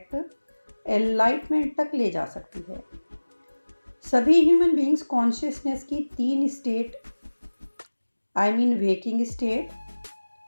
एनलाइटमेंट तक ले जा सकती है। सभी ह्यूमन बीइंग्स कॉन्शियसनेस की 3 state, waking state,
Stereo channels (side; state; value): both; inverted; correlation -1.00